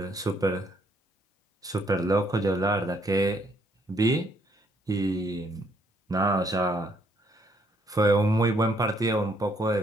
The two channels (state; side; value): normal; both; correlation 0.69